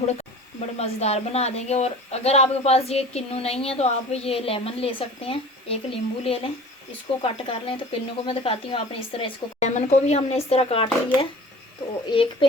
बड़े मज़ेदार बना देंगे। और अगर आपके पास ये किन्नू नहीं है तो आप ये लेमन ले सकते हैं, एक नींबू ले लें, इसको कट कर लें। तो किन्नू को मैं दिखाती हूँ, आपने इस तरह इसको, लेमन को भी हमने इस तरह काट लिया है। तो एक पे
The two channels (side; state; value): both; normal; correlation 0.42